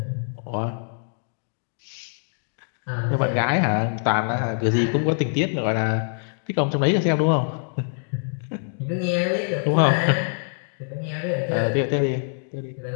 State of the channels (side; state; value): right; silent; digital silence